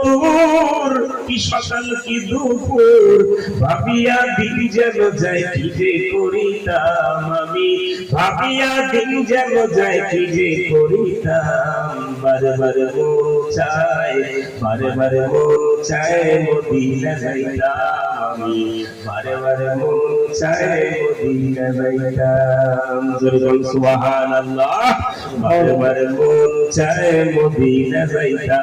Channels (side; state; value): both; identical; correlation 1.00